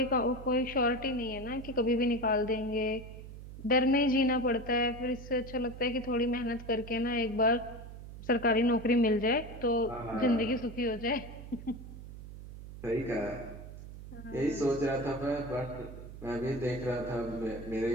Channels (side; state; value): right; noise; hum, 13 dB below the sound